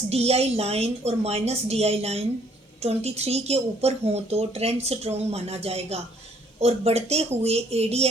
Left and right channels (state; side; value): normal; both; correlation 0.63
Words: DI लाइन और माइनस DI लाइन 23 के ऊपर हों तो ट्रेंड स्ट्रॉन्ग माना जाएगा और बढ़ते हुए